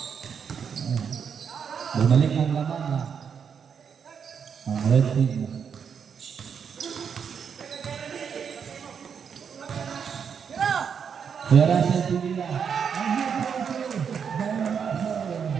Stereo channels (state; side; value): quieter; left; 7.0 dB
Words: Bumalik ang laman na ang red team. Kaya Russell Pinila.